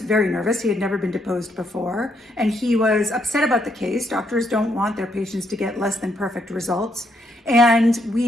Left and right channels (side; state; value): both; normal; correlation 0.75